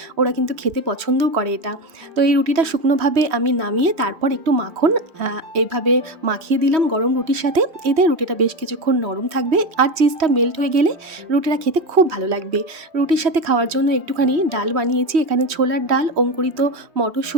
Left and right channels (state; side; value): late; left; 3.1 ms